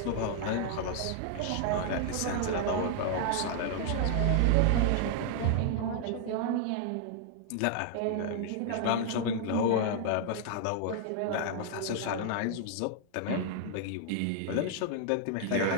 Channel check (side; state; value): both; different; correlation 0.00